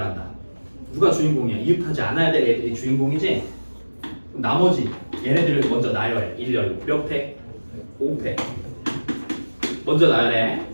누가 주인공이야? 이웃하지 않아야 될 애들이 주인공이지? 그럼 나머지 얘네들을 먼저 나열해. 1열 몇 팩? 5팩 먼저 나열해.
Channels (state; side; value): inverted; both; correlation -1.00